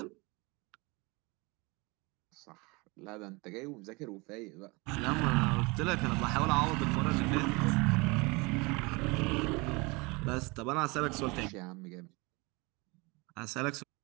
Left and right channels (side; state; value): left; quieter; 26.4 dB